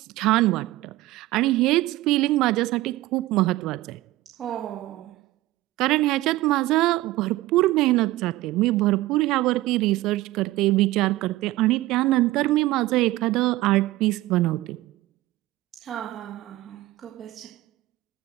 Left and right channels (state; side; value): quieter; left; 17.5 dB